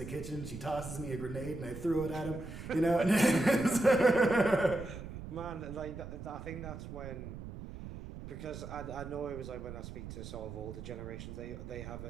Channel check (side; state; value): right; noise; rumble, 10 dB below the sound